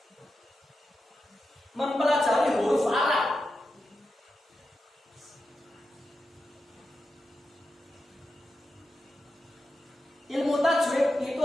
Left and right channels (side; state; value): both; normal; correlation 0.89